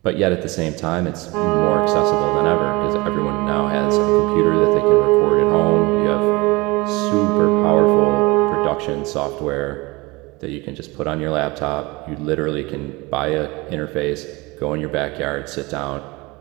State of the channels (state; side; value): quieter; left; 23.9 dB